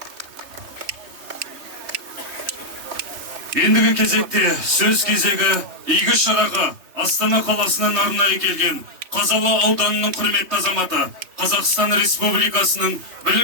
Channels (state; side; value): late; left; 3.2 ms